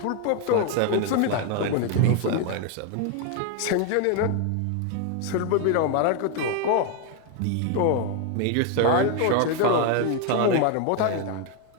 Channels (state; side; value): different; both; correlation 0.01